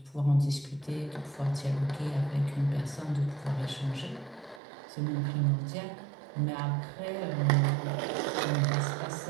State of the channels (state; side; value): drops out; left; at 4.6 s